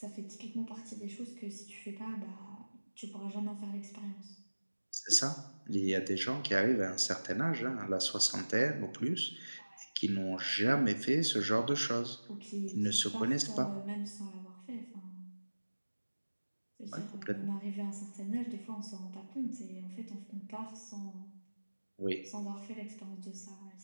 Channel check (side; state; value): both; inverted; correlation -1.00